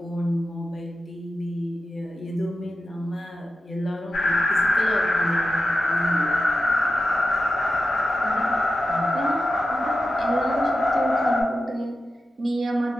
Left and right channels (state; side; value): normal; both; correlation 0.91